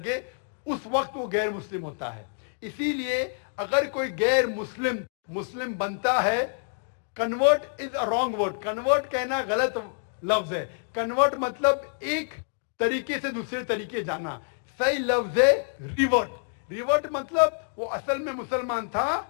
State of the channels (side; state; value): right; silent; digital silence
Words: اس وقت وہ غیر مسلم ہوتا ہے۔ اسی لیے اگر کوئی غیر مسلم بنتا ہے، convert is a wrong word, convert کہنا غلط لفظ ہے۔ کنورٹ مطلب ایک طریقے سے دوسرے طریقے جانا، صحیح لفظ ہے ریورٹ۔ ریورٹ مطلب وہ اصل میں مسلمان تھا،